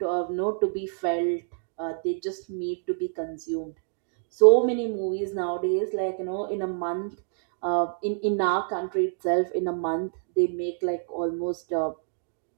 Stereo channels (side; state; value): left; silent; digital silence